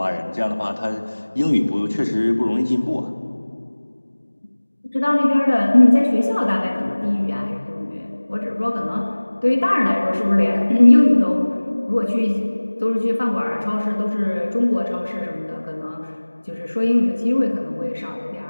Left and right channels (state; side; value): inverted; both; correlation -1.00